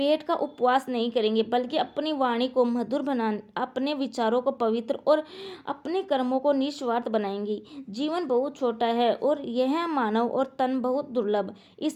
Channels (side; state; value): both; identical; correlation 1.00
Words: का उपवास नहीं करेंगे, बल्कि अपनी वाणी को मधुर अपने विचारों को पवित्र और अपने कर्मों को निस्वार्थ बनाएंगे। जीवन बहुत छोटा है और यह मानव और तन बहुत दुर्लभ।